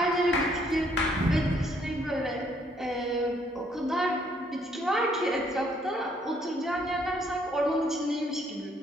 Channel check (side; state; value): both; normal; correlation 0.67